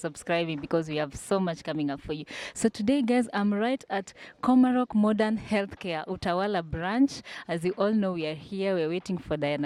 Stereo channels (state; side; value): identical; both; correlation 1.00